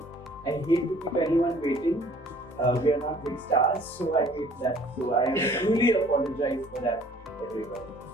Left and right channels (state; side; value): normal; both; correlation 0.54